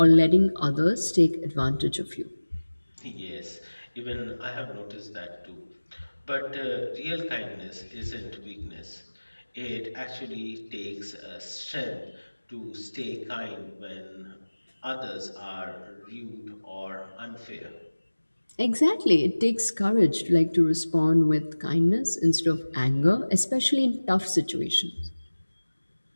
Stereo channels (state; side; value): inverted; both; correlation -1.00